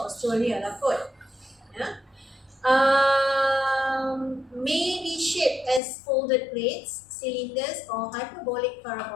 lah kot. Ya. May be shaped as folded plates, cylinders or hyperbolic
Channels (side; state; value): right; drops out; at 5.8 s